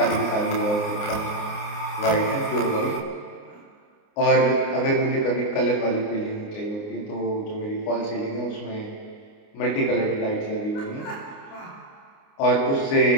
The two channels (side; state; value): right; late; 29 ms